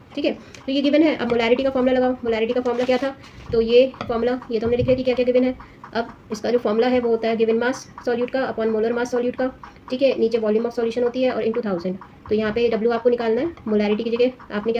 ठीक है। तो ये गिवन है। अब मोलैरिटी का फॉर्मूला लगाओ। मोलैरिटी का फॉर्मूला क्या था, तो ये फॉर्मूला ये तो हमने लिख लिया कि क्या क्या गिवन है। अब इसका जो फॉर्मूला है वो होता है गिवन मास सॉल्यूट का अपॉन मोलर मास सॉल्यूट का, ठीक है। नीचे वॉल्यूम ऑफ सॉल्यूशन होती है और इंटू 1000। तो यहाँ पे W आपको निकालना है। मोलैरिटी की जगह आपने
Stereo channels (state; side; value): identical; both; correlation 1.00